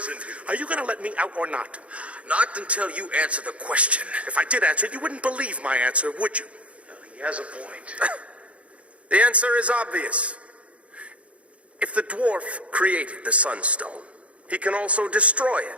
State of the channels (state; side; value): late; left; 0.063 ms